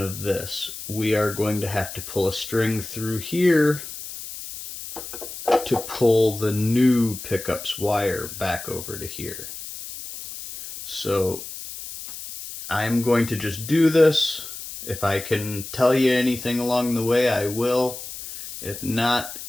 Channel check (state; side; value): noise; left; hiss, 11 dB below the sound